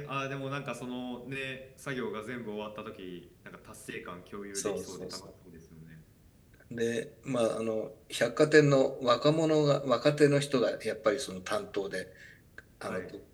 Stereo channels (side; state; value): both; identical; correlation 1.00